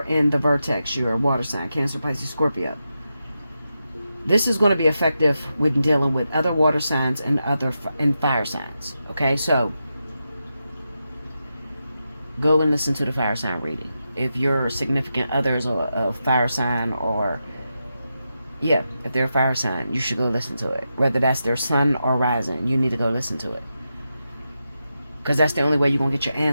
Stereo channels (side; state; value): both; inverted; correlation -0.88